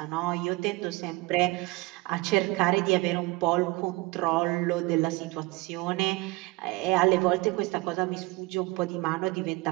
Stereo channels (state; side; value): quieter; left; 22.5 dB